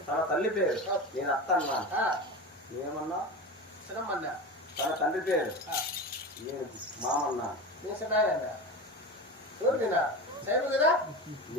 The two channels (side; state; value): both; normal; correlation 0.26